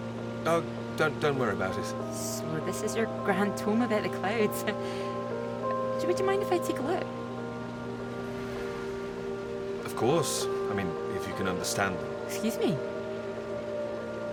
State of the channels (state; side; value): identical; both; correlation 1.00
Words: Oh, don't worry about it. So this is your grand tome about the clouds. Would you mind if I take a look? Of course. I mean, if you can understand them. Excuse me?